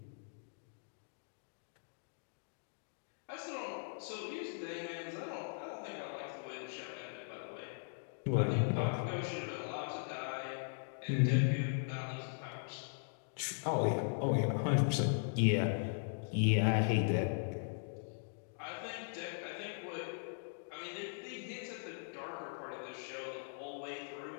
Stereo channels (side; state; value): right; silent; digital silence